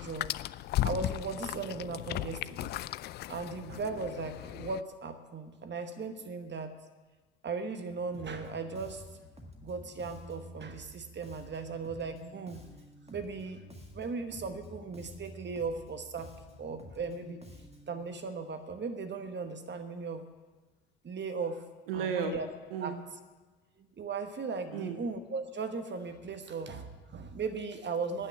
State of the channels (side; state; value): both; normal; correlation 0.15